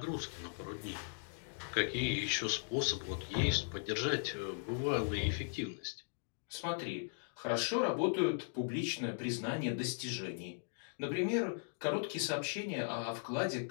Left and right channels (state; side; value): silent; right; digital silence